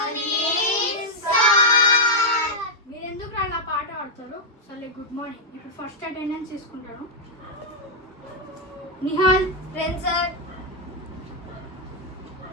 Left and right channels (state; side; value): normal; both; correlation -0.02